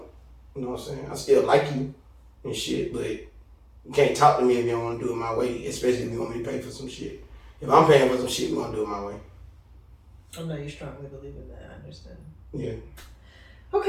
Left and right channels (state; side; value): identical; both; correlation 1.00